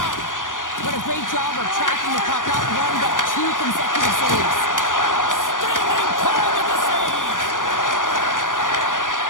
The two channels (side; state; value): right; late; 0.88 ms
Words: What a great job of tracking the puck, not one, but two consecutive saves. Standing tall with the save.